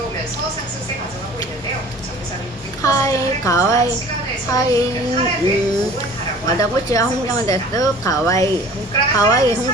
상승세 가져가고 있는데요. 정규사는 6% 하이 가와이 하이 와다구치와 홍정화 데스 가와이 가와이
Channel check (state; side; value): normal; both; correlation 0.46